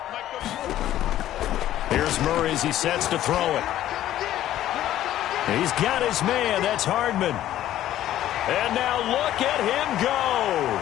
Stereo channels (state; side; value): quieter; right; 12.9 dB